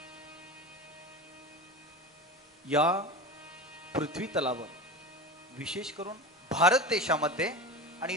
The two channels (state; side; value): normal; both; correlation 0.27